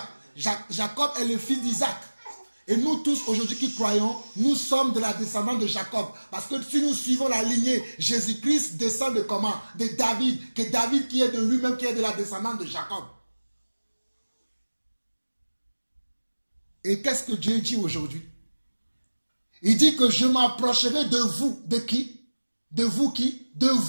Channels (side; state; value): both; inverted; correlation -1.00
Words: Jacob est le fils d'Isaac. Et nous tous aujourd'hui qui croyons, nous sommes de la descendance de Jacob. Parce que si nous suivons la lignée, Jésus-Christ descend de comment? De David. Que David qui est de lui-même, qui est de la descendance de Jacob. Et qu'est-ce que Dieu dit aujourd'hui? Il dit que je m'approcherai de vous. De qui? De vous qui? De